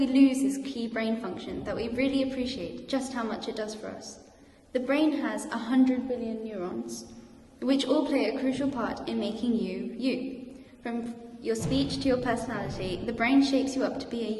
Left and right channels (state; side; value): identical; both; correlation 1.00